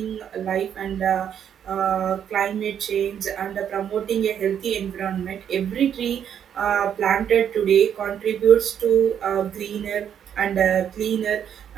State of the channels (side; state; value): left; quieter; 8.9 dB